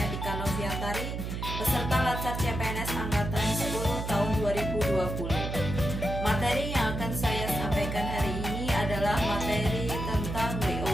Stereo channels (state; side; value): noise; right; hum, 4 dB below the sound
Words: Ika Noviantari, peserta Latsar CPNS Angkatan 10 tahun 2020. Materi yang akan saya sampaikan hari ini adalah materi tentang